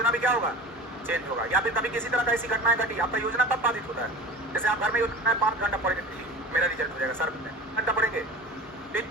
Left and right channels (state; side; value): normal; both; correlation 0.36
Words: भी क्या होगा, चेंज होगा। या फिर कभी किसी तरह का ऐसी घटनाएं घटी, आपका योजना तब बाधित होता है। जैसे आप घर में योजना 5 घंटा पढ़ेंगे, मेरा रिजल्ट हो जाएगा सर, घंटा पढ़ेंगे,